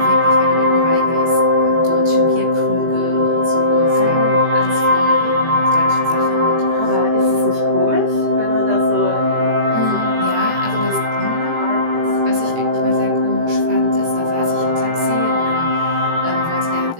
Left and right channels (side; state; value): left; late; 18 ms